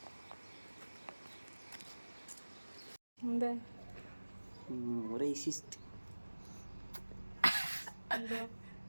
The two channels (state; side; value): inverted; both; correlation -1.00